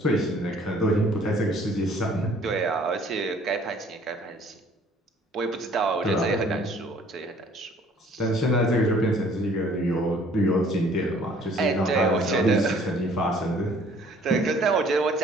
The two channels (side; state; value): both; normal; correlation 0.57